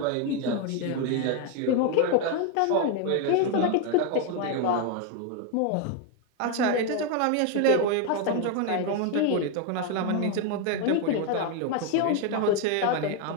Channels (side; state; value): both; different; correlation 0.01